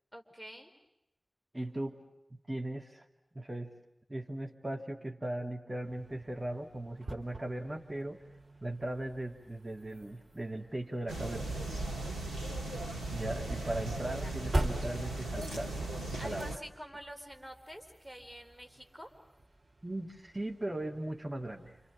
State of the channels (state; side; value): normal; both; correlation 0.93